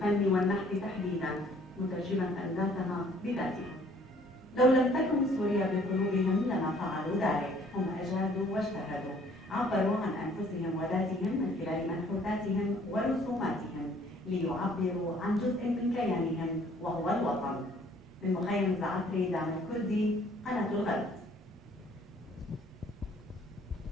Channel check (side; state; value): both; normal; correlation 0.59